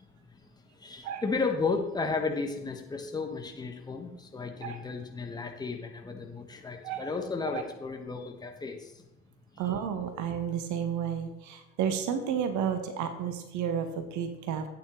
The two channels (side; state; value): both; normal; correlation 0.31